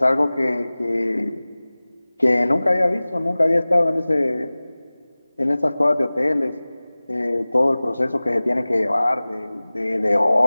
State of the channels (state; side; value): inverted; both; correlation -0.99